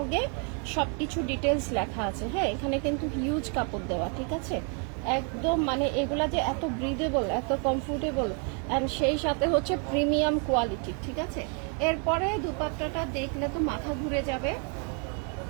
সবকিছু ডিটেলস লেখা আছে। হ্যাঁ, এখানে কিন্তু হিউজ কাপড় দেওয়া, ঠিক আছে। একদম মানে এগুলা যে এত ব্রিদেবল, এত কমফোর্টেবল, অ্যান্ড সেই সাথে হচ্ছে প্রিমিয়াম কোয়ালিটি, ঠিক আছে। এরপরে দুপাট্টাটা দেখলে তো মাথা ঘুরে যাবে।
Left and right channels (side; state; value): left; quieter; 38.0 dB